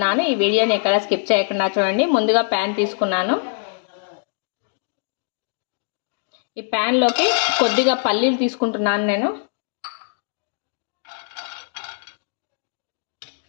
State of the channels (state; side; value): silent; right; digital silence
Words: ఈ వీడియోని ఎక్కడ స్కిప్ చేయకుండా చూడండి. ముందుగా ప్యాన్ తీసుకున్నాను. ఈ ప్యాన్లోకి కొద్దిగా పల్లీలు తీసుకుంటున్నాను నేను.